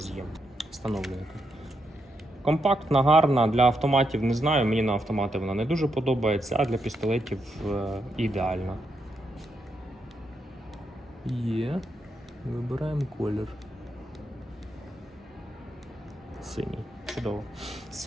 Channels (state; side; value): normal; both; correlation 0.82